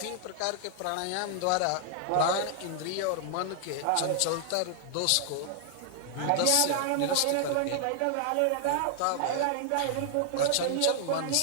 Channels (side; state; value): both; different; correlation 0.00